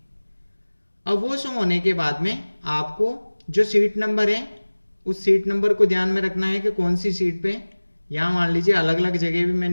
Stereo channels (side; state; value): both; inverted; correlation -1.00